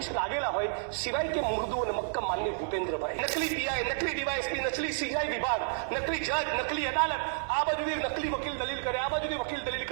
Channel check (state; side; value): silent; left; digital silence